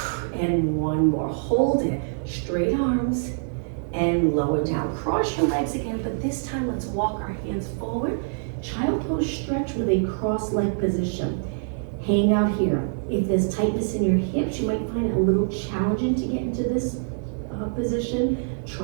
and 1 more. Hold it. Straight arms, and lower down. Cross your legs again, but this time let's walk our hands forward. Child pose stretch with a cross-leg position. Hang out here. If there's tightness in your hips, you might find it a little challenging to get into this position.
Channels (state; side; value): silent; left; 55 dB below the other